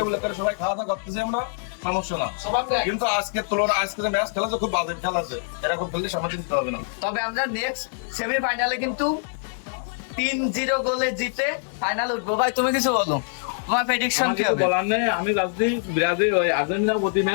উল্লেখের সবাই খাওয়া দাওয়া করতেছি আমরা, সমস্যা না। কিন্তু আজকের তুলনায় আজকে যে ম্যাচ খেলা খুব বাজে খেলা আছে, এরকম খেললে সামনে চিনতে হবে না। তবে আমরা নেক্সট সেমিফাইনালে কিন্তু 3-0 গোলে জিতে ফাইনাল উঠবো। ভাই তুমি কিছু বলো, তোমার প্রেডিকশন কি হবে? বলার নেই, আমি ভাবছি ব্রাজিল ওই আর্জেন্টিনা প্রতি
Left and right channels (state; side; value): silent; right; 62 dB below the other